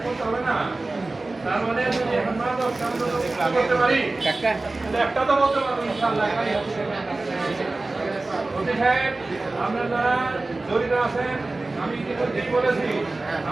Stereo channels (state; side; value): quieter; left; 3.2 dB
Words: করতে হবে না। তার মানে যদি এখন মাদক করতে পারি, একটা তো বলতে পারবো ইনশাআল্লাহ। অতি সাহেব, আপনারা যারা জড়িত আছেন, আমি ইতিমধ্যেই বলেছি,